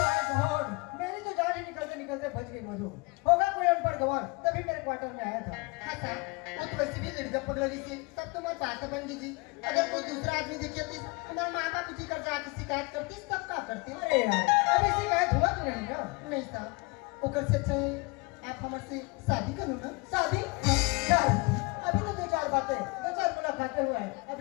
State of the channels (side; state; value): right; quieter; 28.1 dB